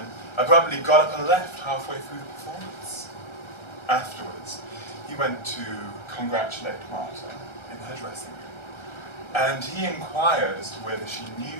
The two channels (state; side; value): late; right; 1.3 ms